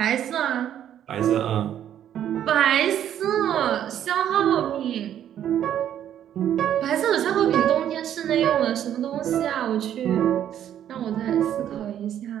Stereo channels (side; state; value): left; quieter; 10.4 dB